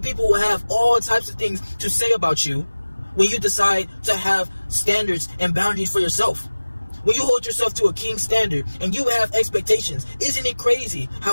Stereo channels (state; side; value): inverted; both; correlation -1.00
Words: people will have all types of things to say about you when you decide to have standards and boundaries for yourself. When you hold yourself to a king standard and you have expectations, isn't it crazy